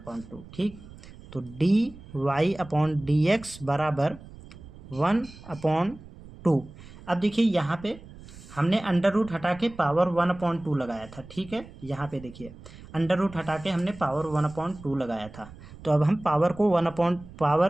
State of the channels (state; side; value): noise; right; rumble, 18 dB below the sound